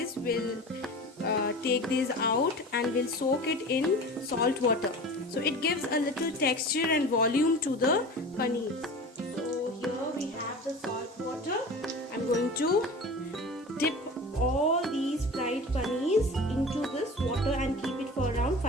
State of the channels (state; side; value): normal; both; correlation 0.35